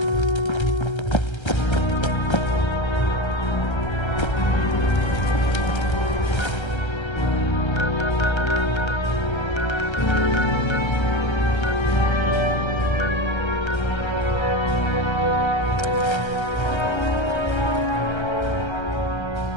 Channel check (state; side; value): late; right; 1.3 ms